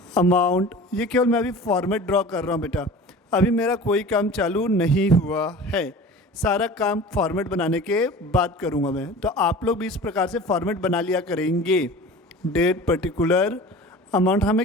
अमाउंट, ये केवल मैं अभी फॉर्मेट ड्रॉ कर रहा हूँ बेटा, अभी मेरा कोई काम चालू नहीं हुआ है, सारा काम फॉर्मेट बनाने के बाद करूँगा मैं। तो आप लोग भी इस प्रकार से फॉर्मेट बना लिया करेंगे। डेट पर्टिकुलर अमाउंट, हमें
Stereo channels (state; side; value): normal; both; correlation 0.39